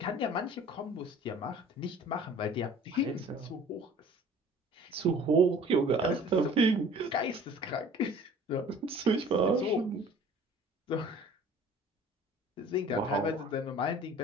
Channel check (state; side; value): normal; both; correlation 0.48